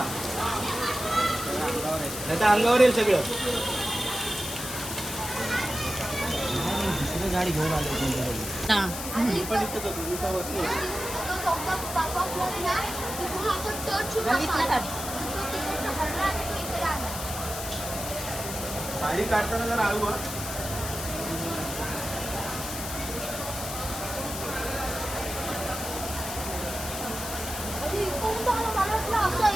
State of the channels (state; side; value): noise; left; hiss, 7 dB below the sound